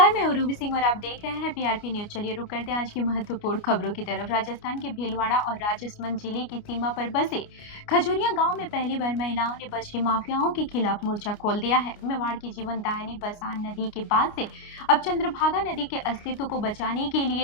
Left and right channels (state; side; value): late; right; 29 ms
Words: मैं हूँ रूबी सिंह और आप देख रहे हैं पीआरपी न्यूज। चलिए रुक करते हैं आज की महत्वपूर्ण खबरों की तरफ। राजस्थान के भीलवाड़ा और राजसमंद जिले की सीमा पर बसे खजूरिया गांव में पहली बार महिलाओं ने बजरी माफियाओं के खिलाफ मोर्चा खोल दिया है। मेवाड़ की जीवनदायिनी बसान नदी के बाद से अब चंद्रभागा नदी के अस्तित्व को बचाने के